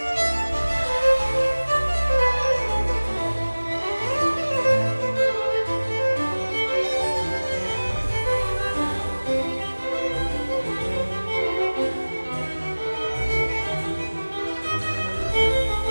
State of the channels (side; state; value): both; inverted; correlation -1.00